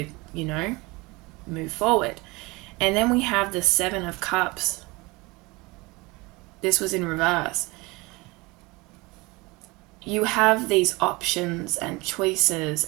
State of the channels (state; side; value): quieter; left; 24.2 dB